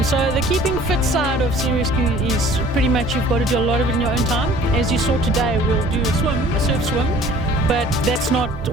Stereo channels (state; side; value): normal; both; correlation 0.51